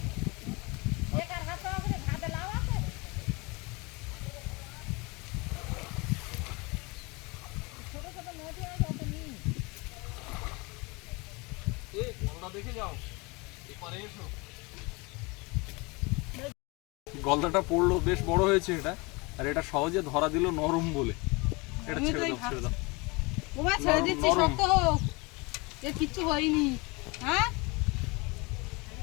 গলদা দেখে যাও, এপারে এসো। গলদাটা পড়লো, বেশ বড় হয়েছে এটা, আর এটা সহজে ধরা দিল নরম বলে। এটা আমি তো ছেড়ে এই দাও, ছেড়ে দাও। ওমা ছেড়ে দিচ্ছি, নরম। শক্ত হোক, এর কিচ্ছু হয়নি। হ্যাঁ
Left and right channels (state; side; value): quieter; right; 26.8 dB